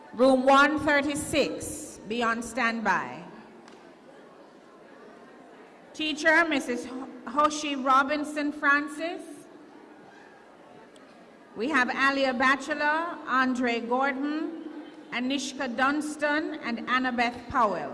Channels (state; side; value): identical; both; correlation 1.00